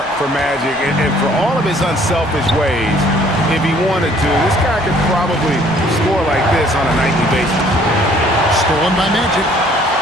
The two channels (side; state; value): both; normal; correlation 0.59